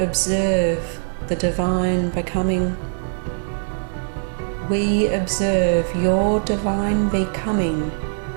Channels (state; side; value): silent; left; digital silence